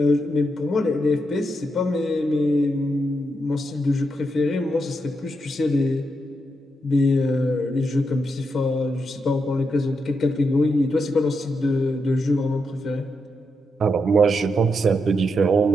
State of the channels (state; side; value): normal; both; correlation 0.83